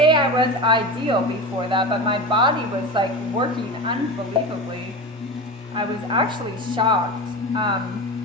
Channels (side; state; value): both; normal; correlation 0.26